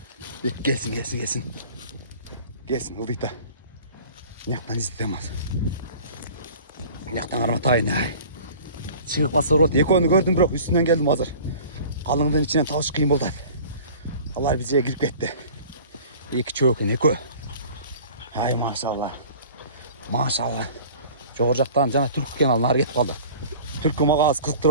Gelsin. Gelsin ıldıydı. Nyaktan izletemez. Nyaktan karmatayın ay. Çıkıp basa rot. Ekonu gördüm bırak üstünden geldim hazır. Kalınlığın içinden tavuş kıyım oldu. Allah bize girip gitti. İki çöğün eko. Hay maşallah. Çoğurcaktan cana Türk kenarına gitip kaldı. Türk'ü mağa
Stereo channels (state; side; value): inverted; both; correlation -0.44